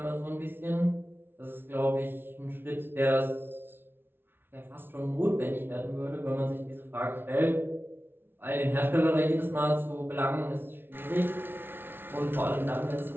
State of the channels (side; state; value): left; late; 0.11 ms